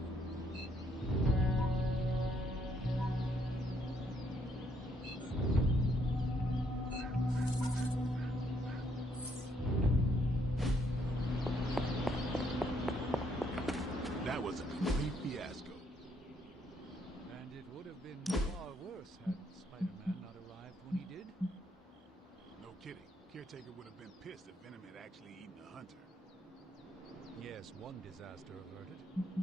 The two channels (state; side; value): normal; both; correlation 0.71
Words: That was a complete fiasco. And it would have been far worse had Spider-Man not arrived when he did. No kidding. Caretaker would have been pissed if Venom had actually eaten a hunter. Yes, one disaster averted.